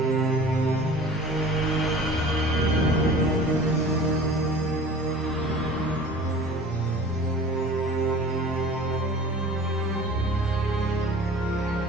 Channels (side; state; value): both; normal; correlation 0.43